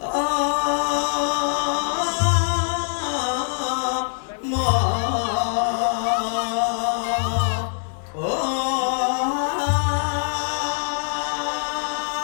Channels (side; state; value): right; silent; 63 dB below the other